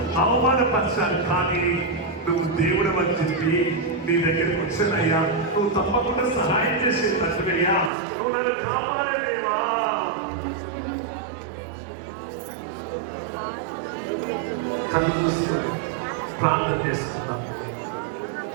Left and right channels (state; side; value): drops out; left; at 7.9 s